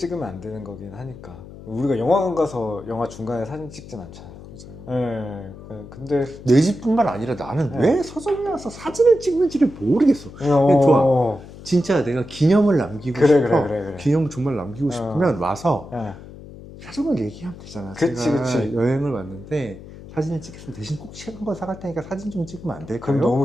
안 되는 거긴 하니까. 우리가 영화관 가서 영화 중간에 사진 찍진 않잖아요. 근데 내 집뿐만 아니라 나는 왜 서점에 와서 사진을 찍는지를 모르겠어. 좋아. 진짜 내가 기념을 남기고 싶어. 그래. 기념을 정말 남기고 싶으면 와서 사진을 얘기하면 되잖아. 제가 여행을 왔는데 사진을 찍겠으면 대신 꼭 책 한 권 사갈 테니까 사진 좀 찍으면 안 될까요? 그럼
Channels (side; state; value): left; noise; hum, 16 dB below the sound